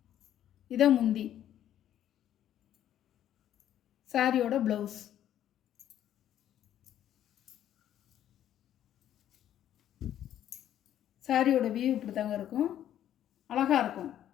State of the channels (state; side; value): quieter; right; 11.2 dB